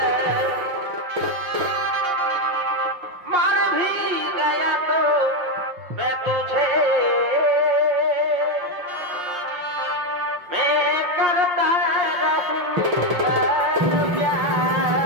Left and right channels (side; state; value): left; late; 5.6 ms